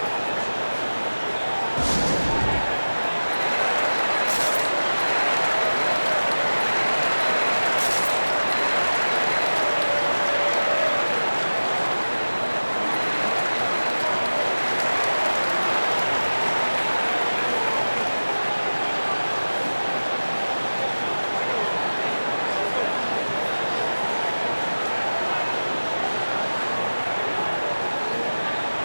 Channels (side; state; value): both; inverted; correlation -1.00